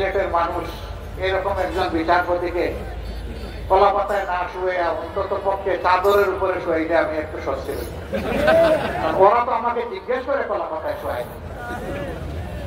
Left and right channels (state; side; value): identical; both; correlation 1.00